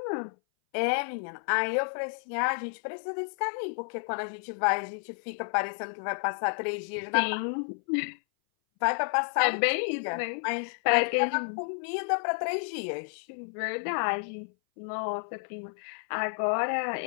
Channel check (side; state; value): right; silent; 57 dB below the other